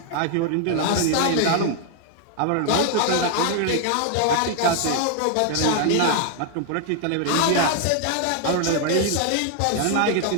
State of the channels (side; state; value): both; different; correlation 0.00